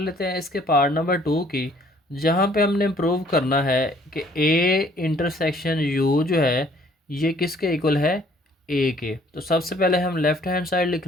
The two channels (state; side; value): normal; both; correlation 0.60